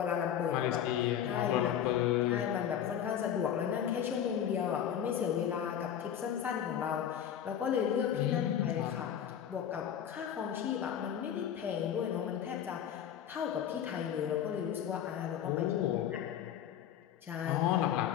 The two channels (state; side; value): quieter; right; 9.5 dB